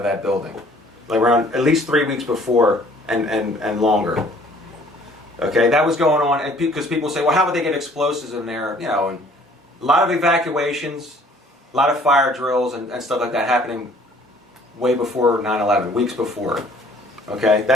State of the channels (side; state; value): both; normal; correlation 0.56